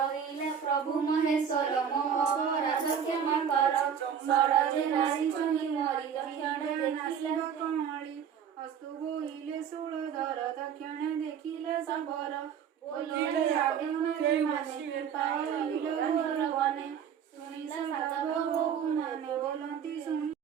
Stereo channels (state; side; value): quieter; left; 7.9 dB